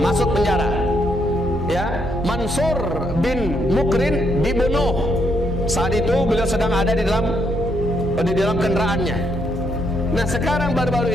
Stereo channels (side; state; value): both; normal; correlation 0.75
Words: penjara. Ya, Mansur bin Mukrin dibunuh. Saat itu beliau sedang ada di dalam kendaraannya. Nah, sekarang